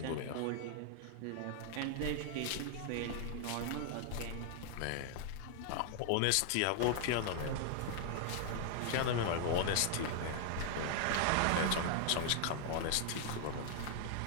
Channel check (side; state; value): both; different; correlation 0.00